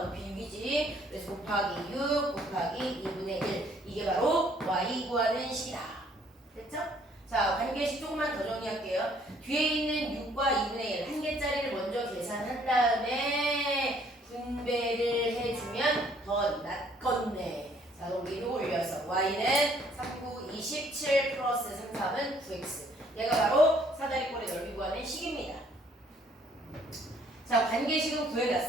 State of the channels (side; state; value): both; normal; correlation 0.63